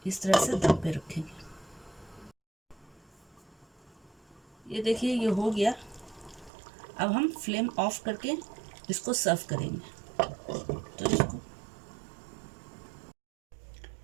इस तरह से दम पे रखेंगे। ये देखिए ये हो गया। अब हम फ्लेम ऑफ करके इसको सर्व करेंगे।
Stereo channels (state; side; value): drops out; left; at 6.5 s